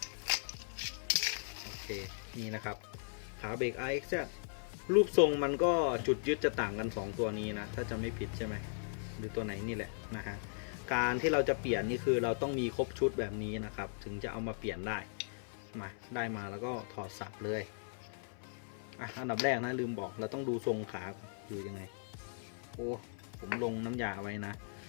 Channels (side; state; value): right; silent; 53 dB below the other